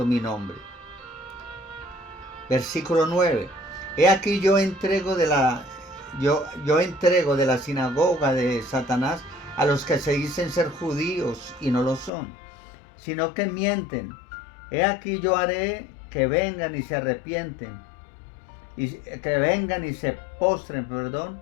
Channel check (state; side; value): drops out; right; at 12.1 s